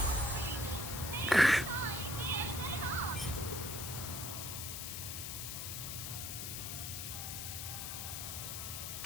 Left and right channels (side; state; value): left; noise; hiss, 4 dB below the sound